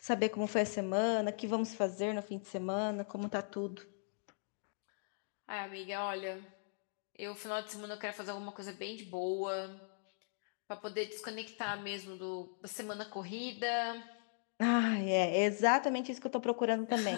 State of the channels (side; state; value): right; silent; digital silence